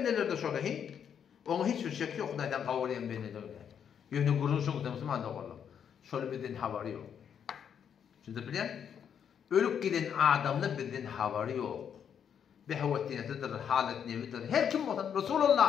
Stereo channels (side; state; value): right; quieter; 8.1 dB